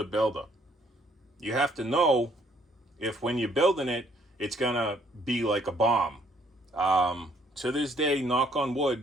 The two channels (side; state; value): both; normal; correlation 0.65